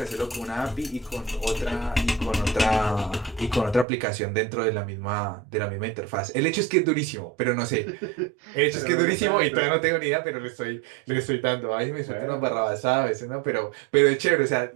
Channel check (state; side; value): drops out; left; at 3.9 s